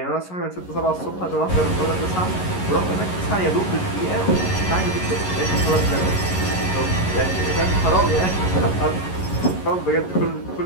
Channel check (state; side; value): late; right; 11 ms